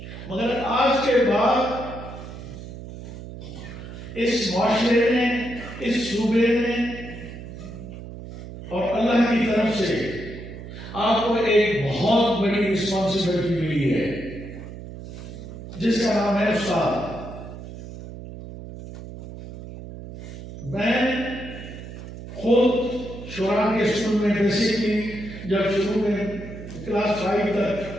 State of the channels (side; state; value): right; noise; hum, 12 dB below the sound